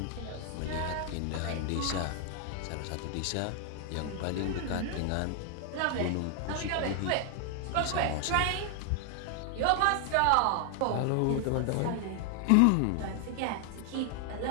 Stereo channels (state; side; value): different; both; correlation 0.00